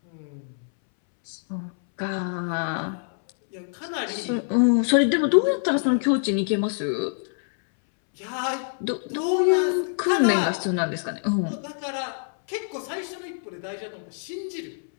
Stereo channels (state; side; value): silent; right; 62 dB below the other